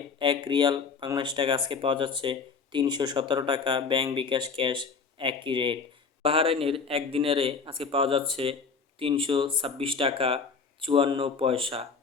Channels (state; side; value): quieter; right; 5.2 dB